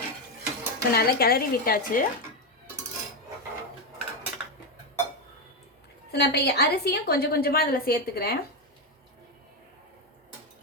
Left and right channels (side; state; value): both; normal; correlation 0.09